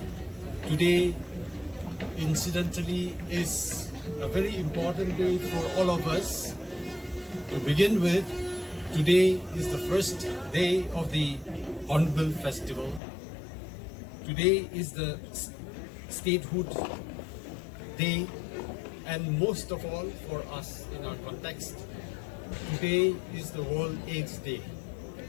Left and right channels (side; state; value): right; drops out; at 13.0 s